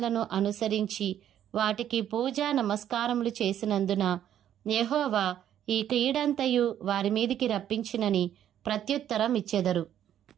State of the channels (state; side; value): quieter; left; 10.6 dB